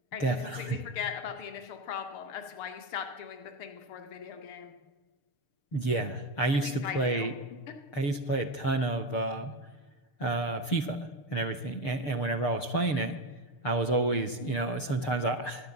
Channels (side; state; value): right; late; 6.7 ms